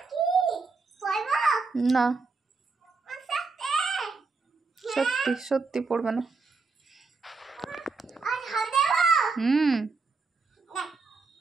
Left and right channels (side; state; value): left; quieter; 4.3 dB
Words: পড়বো না, সত্যি সত্যি পড়বে না। হুম